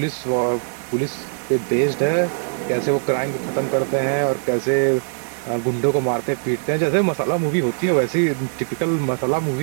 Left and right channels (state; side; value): silent; left; digital silence